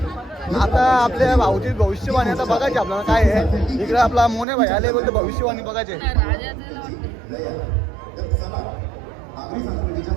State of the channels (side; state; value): left; drops out; at 4.5 s